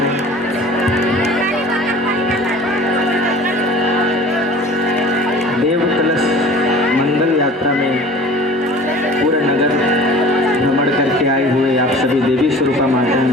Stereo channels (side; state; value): both; normal; correlation 0.43